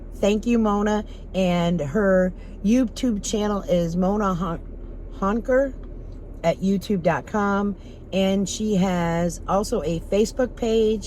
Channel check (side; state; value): both; identical; correlation 1.00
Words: thank you, Mona. And her YouTube channel is Mona Honker at youtube.com. And she has also a Facebook